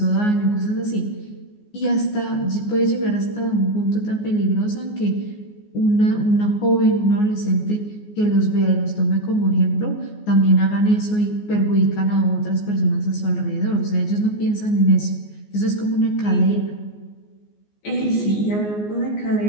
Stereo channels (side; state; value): right; late; 14 ms